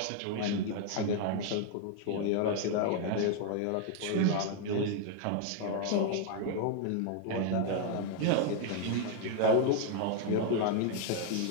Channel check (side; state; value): both; different; correlation 0.00